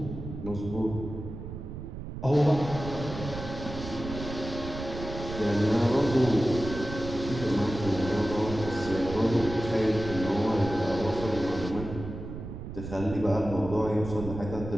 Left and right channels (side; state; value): right; noise; rumble, 9 dB below the sound